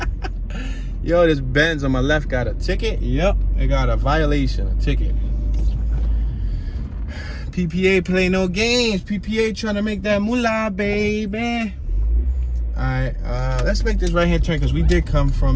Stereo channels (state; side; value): identical; both; correlation 1.00